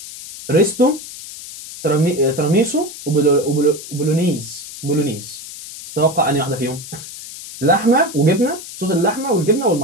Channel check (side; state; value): left; noise; hiss, 13 dB below the sound